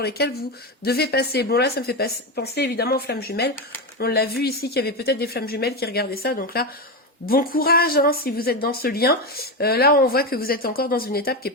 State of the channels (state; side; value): normal; both; correlation 0.14